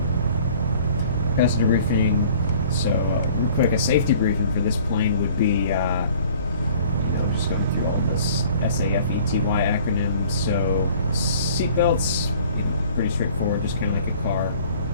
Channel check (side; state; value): both; inverted; correlation -0.52